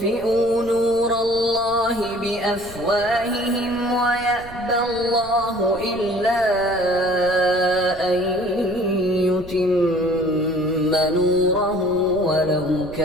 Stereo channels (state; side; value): noise; right; rumble, 18 dB below the sound